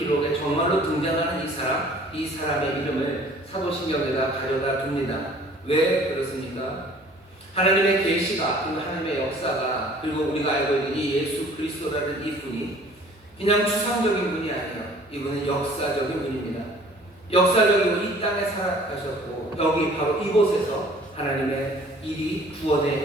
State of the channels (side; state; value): both; normal; correlation 0.52